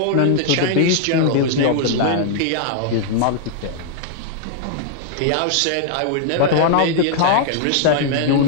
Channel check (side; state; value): both; different; correlation 0.00